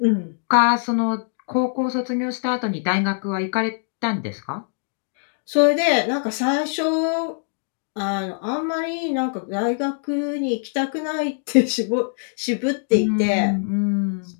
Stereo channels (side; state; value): right; silent; digital silence